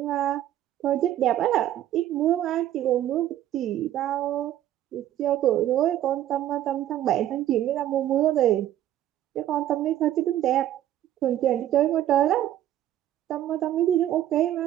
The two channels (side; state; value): left; quieter; 12.4 dB